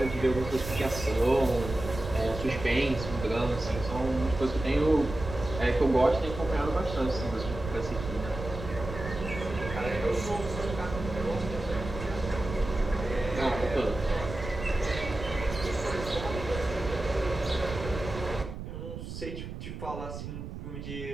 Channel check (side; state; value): right; noise; rumble, 9 dB below the sound